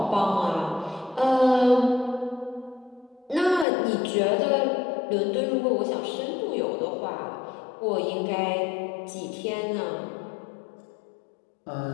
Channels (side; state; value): right; drops out; at 3.7 s